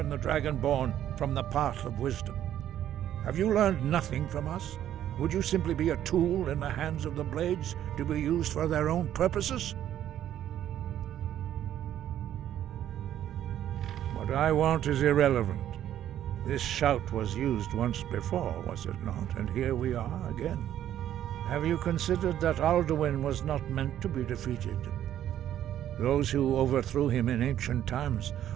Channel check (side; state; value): left; quieter; 11.3 dB